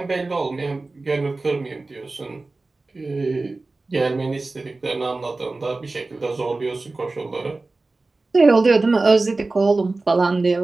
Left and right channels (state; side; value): quieter; left; 3.4 dB